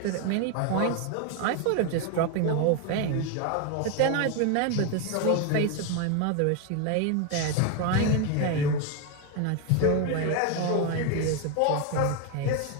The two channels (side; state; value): both; different; correlation 0.01